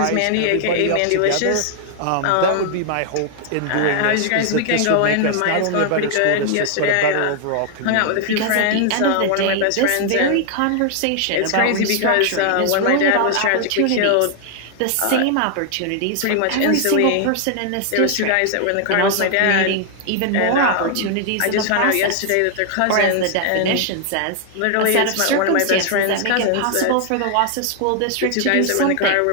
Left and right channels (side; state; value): both; different; correlation 0.00